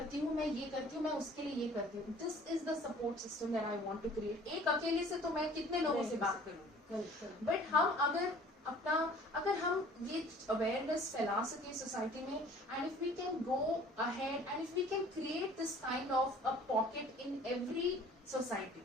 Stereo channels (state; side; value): normal; both; correlation 0.50